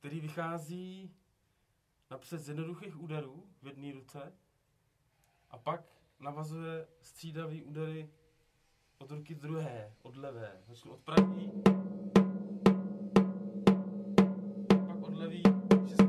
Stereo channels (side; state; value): both; identical; correlation 1.00